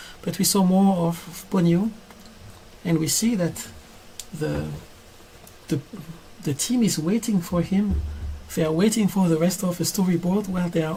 but we saw more of Ponyo, and we see that the team is waiting for him. They are waiting for the rest of the storyboard while they are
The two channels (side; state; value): both; identical; correlation 1.00